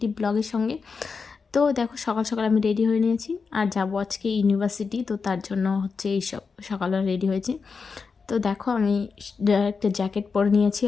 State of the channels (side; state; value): right; quieter; 5.1 dB